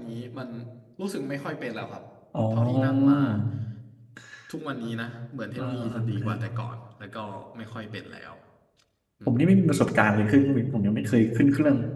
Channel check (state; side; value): identical; both; correlation 1.00